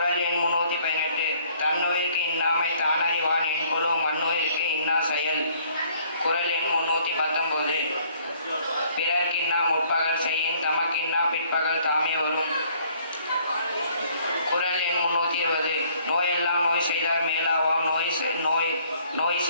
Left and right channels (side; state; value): both; inverted; correlation -0.60